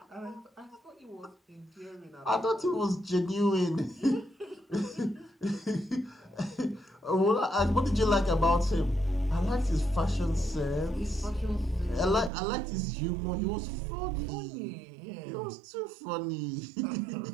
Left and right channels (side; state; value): left; drops out; at 12.3 s